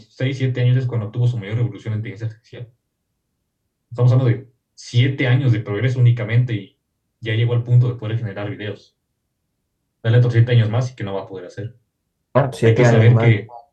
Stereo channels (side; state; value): both; identical; correlation 1.00